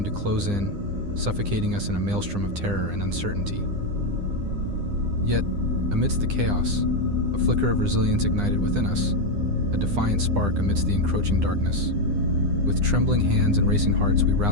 to close in, suffocating us in a maelstrom of terror and uncertainty. Yet, amidst the chaos, a flicker of resilience ignited within us, a defiant spark amidst the encroaching darkness. With trembling hands and racing hearts, we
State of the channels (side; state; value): left; late; 9.9 ms